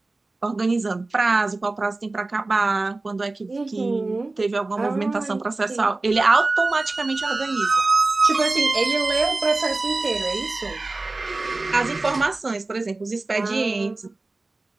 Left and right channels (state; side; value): quieter; left; 3.2 dB